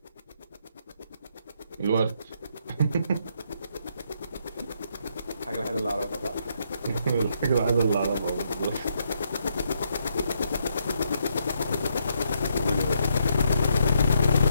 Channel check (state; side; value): inverted; both; correlation -0.76